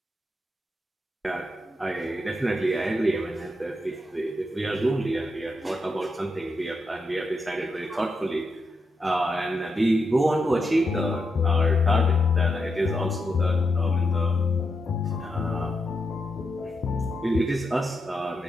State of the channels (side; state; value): both; normal; correlation 0.84